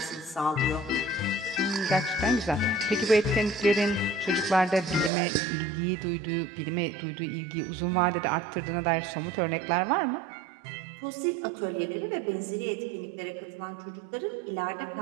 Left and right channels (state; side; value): drops out; left; at 5.1 s